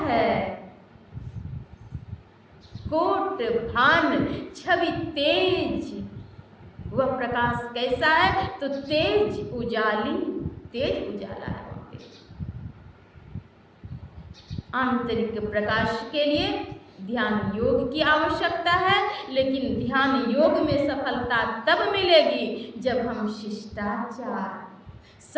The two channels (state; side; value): identical; both; correlation 1.00